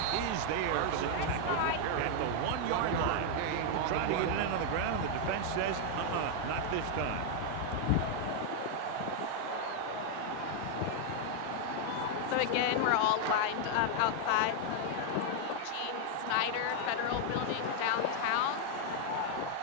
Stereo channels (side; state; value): both; different; correlation 0.00